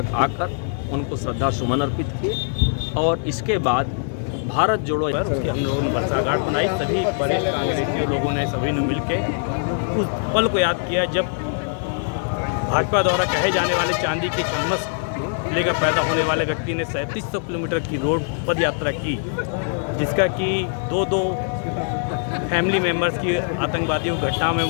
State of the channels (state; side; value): silent; right; 58 dB below the other